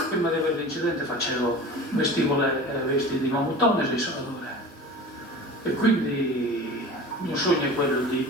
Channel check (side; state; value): both; normal; correlation 0.37